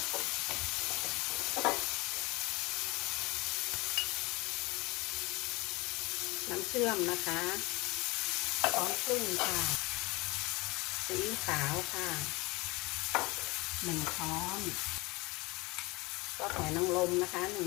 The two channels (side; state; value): right; quieter; 23.9 dB